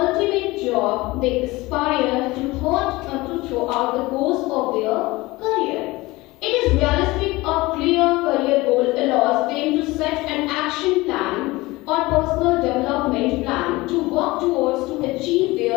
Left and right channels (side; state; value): right; quieter; 20.9 dB